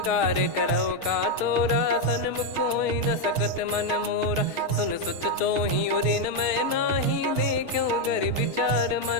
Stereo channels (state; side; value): late; right; 6.3 ms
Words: करो का तोरा, सन्मुख कोई न सकत मन मोरा। सुन सुत तो ही उदिन मैं नाही, देखो गर विचार